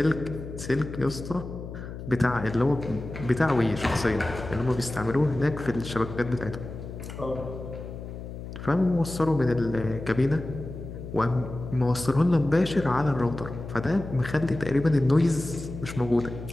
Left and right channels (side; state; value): left; noise; hum, 10 dB below the sound